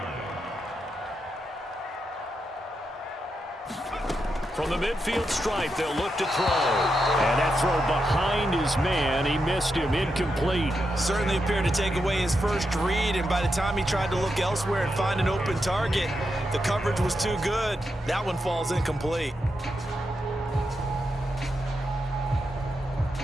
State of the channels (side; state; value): both; normal; correlation 0.85